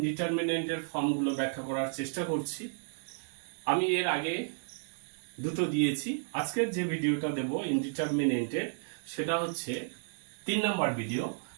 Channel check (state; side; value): silent; left; digital silence